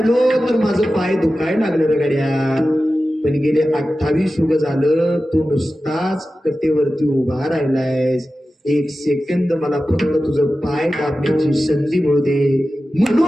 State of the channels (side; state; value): both; normal; correlation 0.94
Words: तर माझं पाय दुखायला लागलं रे गड्या. पण गेले 28 युग झालं तू नुसताच कटेवरती उभा राहिलायस. 1 सेकंद मला फक्त तुझं पाय दाबण्याची संधी मिळू दे